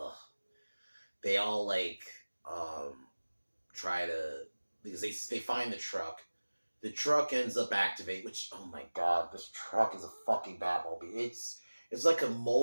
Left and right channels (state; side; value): inverted; both; correlation -1.00